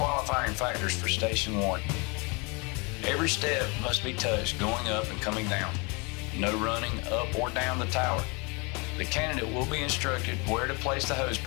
factors for Station 1. Every step must be touched going up and coming down. No running up or down the tower. The candidate will be instructed where to place the hose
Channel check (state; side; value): quieter; right; 30.3 dB